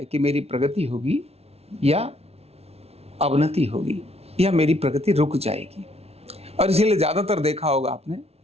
कि मेरी प्रगति होगी या अवनति होगी या मेरी प्रगति रुक जाएगी। और इसीलिए ज़्यादातर देखा होगा आपने,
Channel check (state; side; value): late; left; 0.30 ms